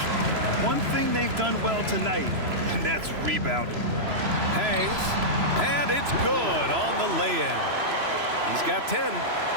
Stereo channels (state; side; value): late; left; 3.0 ms